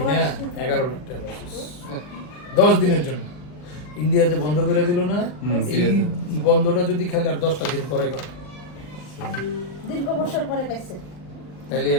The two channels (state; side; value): late; right; 40 ms